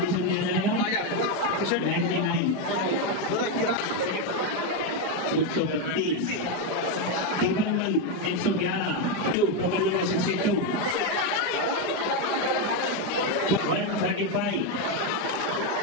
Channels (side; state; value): right; late; 4.9 ms